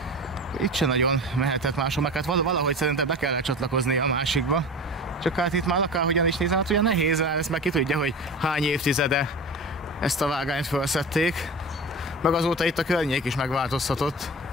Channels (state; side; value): normal; both; correlation 0.31